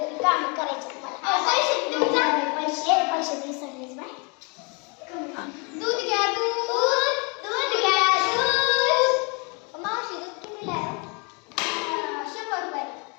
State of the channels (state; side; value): quieter; right; 32.5 dB